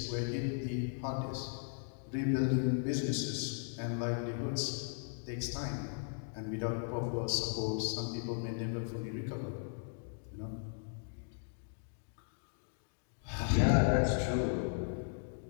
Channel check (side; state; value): right; silent; digital silence